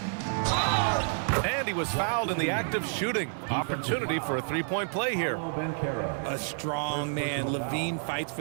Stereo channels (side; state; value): left; silent; 58 dB below the other